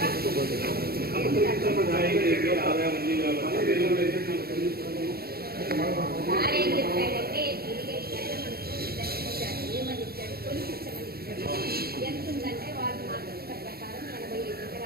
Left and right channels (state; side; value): late; left; 0.45 ms